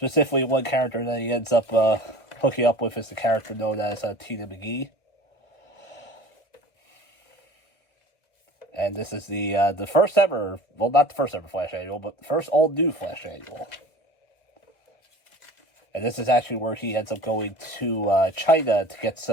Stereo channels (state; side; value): late; right; 1.6 ms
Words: one character that he ends up hooking up with is the character known as Tina McGee. And this is the first ever, well, not the first ever Flash annual, but the first all-new Flash annual. And this is actually where he ends up going to China to get